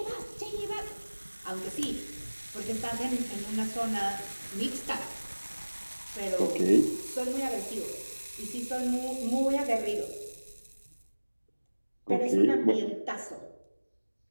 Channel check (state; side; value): inverted; both; correlation -1.00